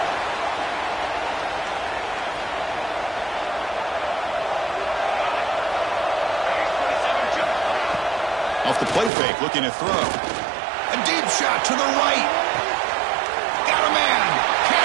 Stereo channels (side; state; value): left; drops out; at 9.1 s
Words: Off the play fake, looking to throw. A deep shot to the right. Got a man.